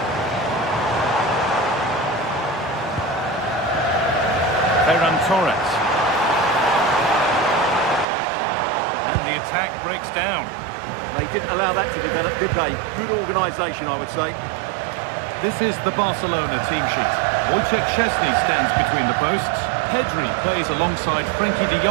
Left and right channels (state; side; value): drops out; left; at 8.1 s